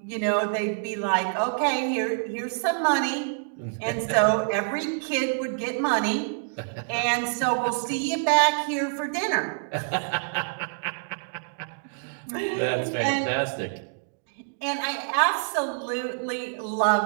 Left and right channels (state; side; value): silent; left; digital silence